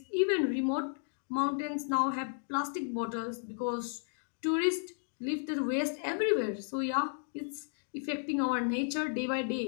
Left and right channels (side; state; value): right; silent; digital silence